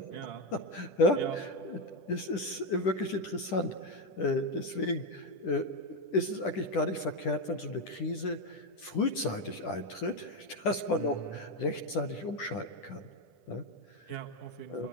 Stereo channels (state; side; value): late; right; 10 ms